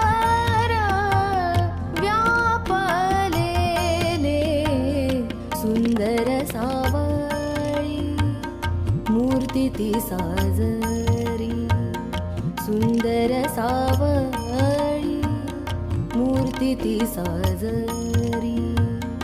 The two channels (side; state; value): both; identical; correlation 1.00